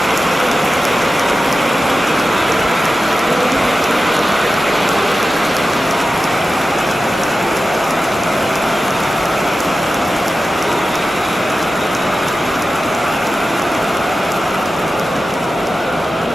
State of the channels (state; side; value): normal; both; correlation 0.93